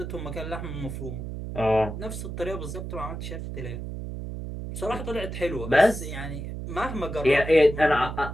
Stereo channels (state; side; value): noise; right; hum, 7 dB below the sound